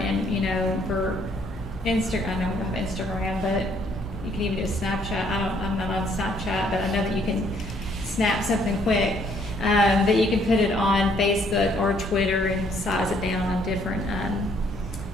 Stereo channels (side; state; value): both; normal; correlation 0.66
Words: and for Instagram, I know we don't have Instagram, but you can even do a Snapchat. I'm not on Snapchat, but I know that you can snap something quick, that you can put it on Facebook or Twitter and size it down on different,